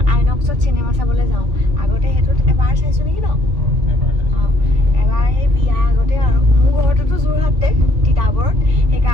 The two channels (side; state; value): left; late; 3.5 ms